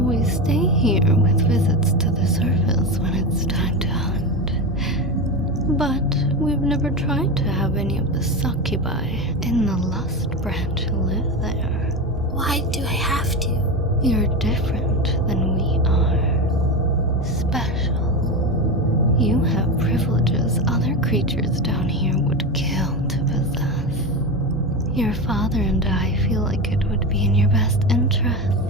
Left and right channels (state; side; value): normal; both; correlation 0.19